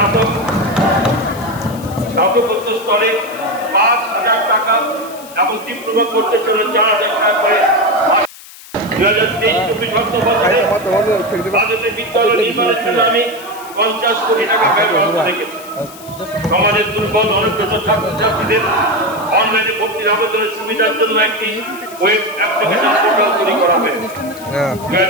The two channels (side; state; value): left; noise; hiss, 18 dB below the sound